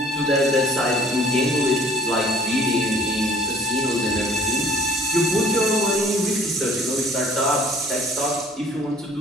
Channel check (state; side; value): normal; both; correlation 0.54